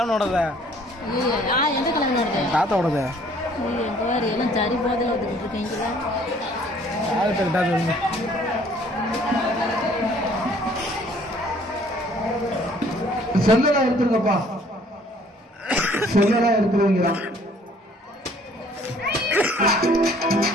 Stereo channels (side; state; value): both; normal; correlation 0.58